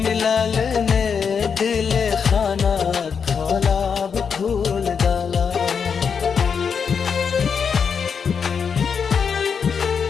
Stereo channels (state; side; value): quieter; right; 6.4 dB